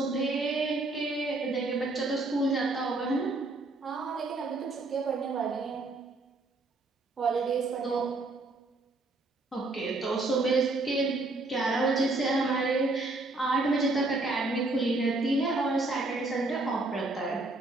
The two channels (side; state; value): left; quieter; 3.1 dB